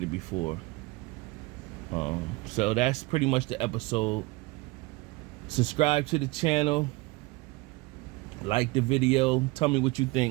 before. So that's pretty much the episode. Subscribe to the channel. Like the video. Tell me what you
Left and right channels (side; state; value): left; quieter; 22.3 dB